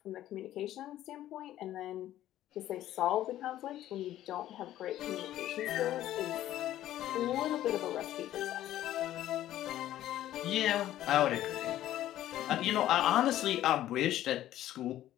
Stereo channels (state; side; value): quieter; right; 13.2 dB